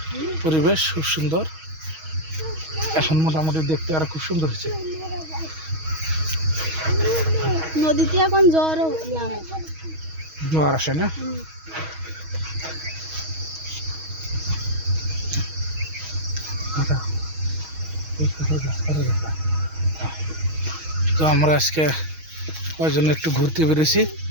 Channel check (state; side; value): late; left; 6.3 ms